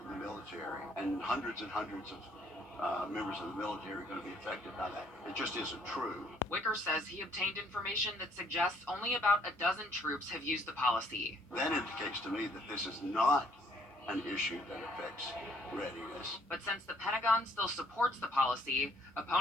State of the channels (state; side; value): normal; both; correlation 0.64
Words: the military, and hundreds of members of the military are going to be affected by that. It just isn't true. Wicker says he obtained information that suggests only about a dozen troops have used the policy. That indicates to me that this is not an issue that affects readiness. But since the Pentagon still supports the policy,